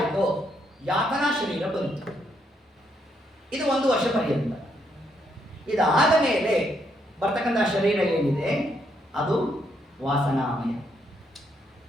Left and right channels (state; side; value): normal; both; correlation 0.75